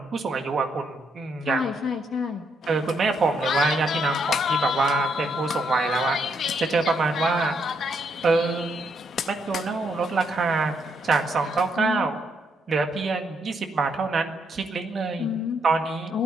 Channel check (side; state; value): both; normal; correlation 0.75